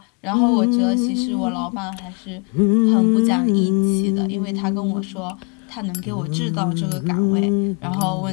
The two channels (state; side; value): quieter; right; 35.5 dB